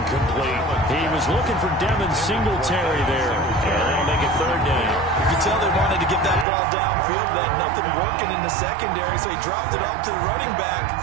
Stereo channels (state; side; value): drops out; left; at 6.5 s